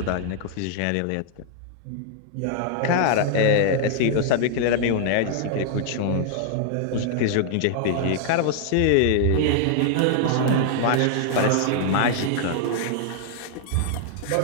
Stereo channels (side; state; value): both; different; correlation 0.00